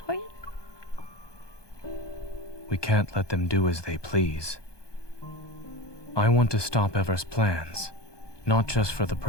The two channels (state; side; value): late; right; 1.2 ms